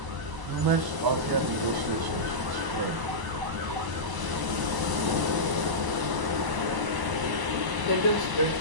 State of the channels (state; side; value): late; left; 1.0 ms